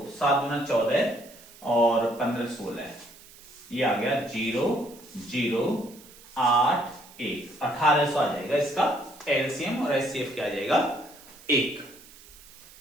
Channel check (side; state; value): right; noise; hiss, 22 dB below the sound